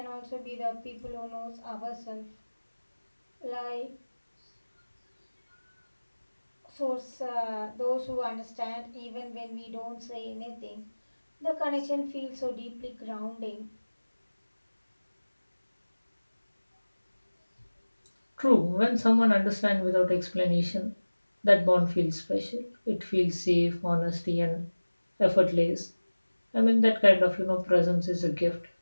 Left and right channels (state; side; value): inverted; both; correlation -1.00